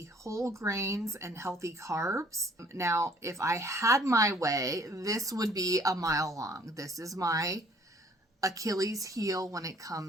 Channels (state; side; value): normal; both; correlation 0.58